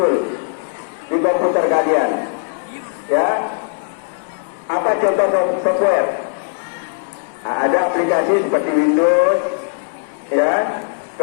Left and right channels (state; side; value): silent; right; 65 dB below the other